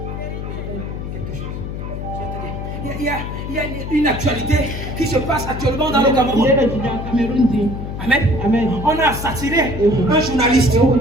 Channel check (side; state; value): left; noise; hum, 6 dB below the sound